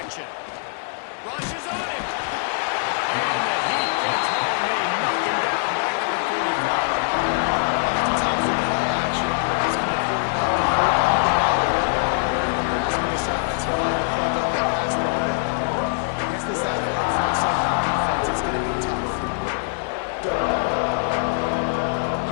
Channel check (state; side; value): silent; right; 63 dB below the other